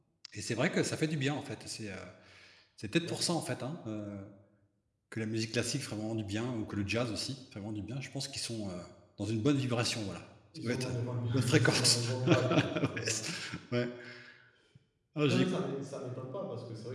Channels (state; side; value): identical; both; correlation 1.00